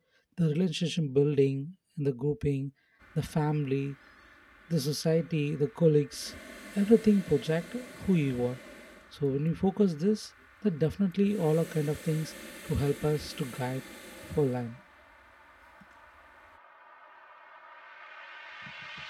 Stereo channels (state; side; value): identical; both; correlation 1.00